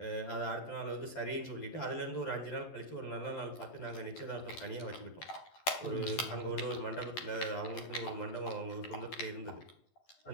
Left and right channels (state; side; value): late; right; 12 ms